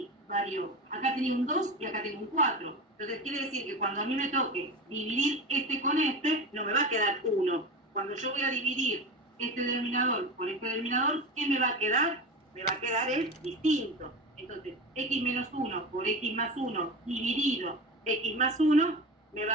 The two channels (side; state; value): both; normal; correlation 0.26